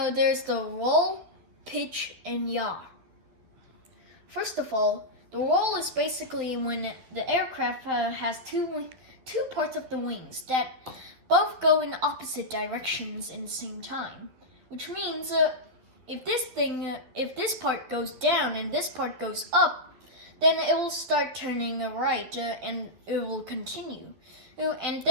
there's the roll, pitch, and yaw. First of all, the roll is basically when the aircraft has two parts of the wings that both go in opposite directions in the same time. Which means if this part goes down and this part goes up, then it will start turning right and it will continue. And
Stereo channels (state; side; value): late; left; 11 ms